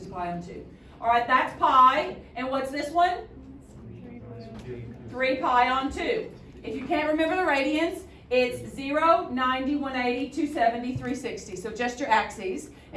pi on 2. All right, that's pi. And what's this one? 3 pi on 2. If you can't remember the radians, it's 0, 90, 180, 270, 360. So just your axes.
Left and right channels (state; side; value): identical; both; correlation 1.00